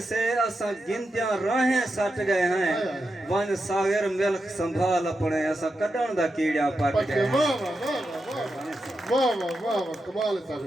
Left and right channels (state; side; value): normal; both; correlation 0.88